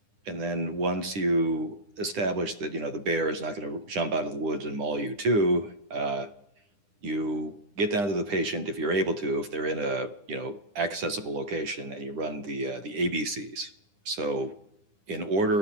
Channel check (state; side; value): late; left; 9.9 ms